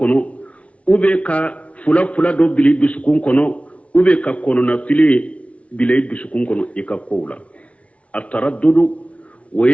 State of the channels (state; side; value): late; right; 0.064 ms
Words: ube ka fula do bili dusukun kono ube ka kono na fili bili dusukun kono ikakola التردد